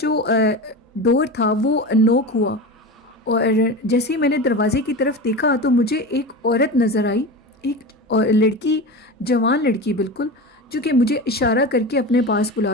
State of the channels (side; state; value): both; normal; correlation 0.26